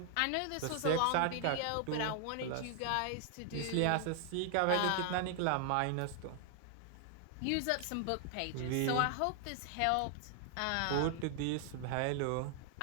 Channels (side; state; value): both; different; correlation 0.00